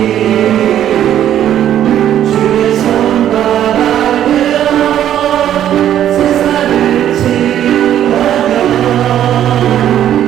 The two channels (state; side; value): quieter; left; 11.0 dB